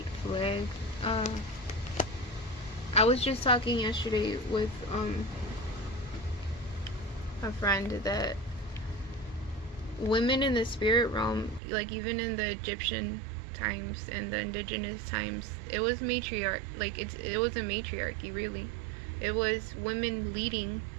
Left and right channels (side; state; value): left; drops out; at 11.6 s